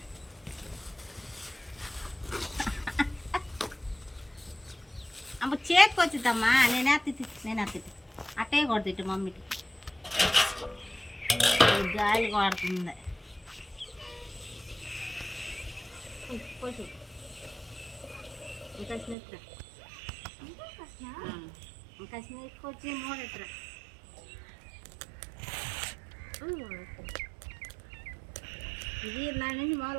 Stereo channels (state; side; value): drops out; left; at 19.2 s